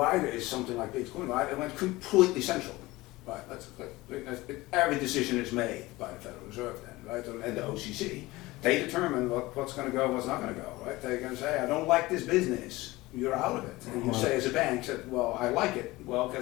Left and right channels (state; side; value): quieter; right; 19.9 dB